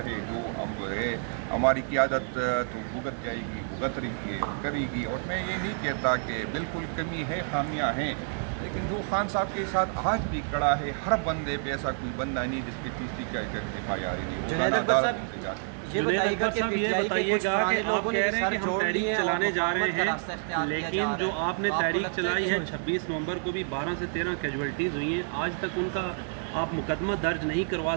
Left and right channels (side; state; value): left; silent; 59 dB below the other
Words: ہے جو ہم جو ہے ہماری قیادت تو بھگت جائے گی، بھگت رہی ہے اور کرے گی. اور میں یہ نہیں کہتا کہ بالکل کمی ہے، خامیاں ہیں، لیکن جو خان صاحب کے ساتھ آج بھی کڑا ہے، ہر بندے پہ ایسا کوئی بندہ نہیں جس پہ 30-40 FIR نہیں. روزانہ عدالتوں سے جاتے ہیں. جنید اکبر صاحب یہ بتائیے گا کہ آپ کہہ رہے ہیں کہ ہم تحریک چلانے جا رہے ہیں، لیکن جو آپ نے تحریک چلائی ہے 26 نومبر کو بھی 12 سے 13 کیجویلٹیز ہوئی ہیں، آج تک ان کا آپ مقدمہ درج نہیں کروا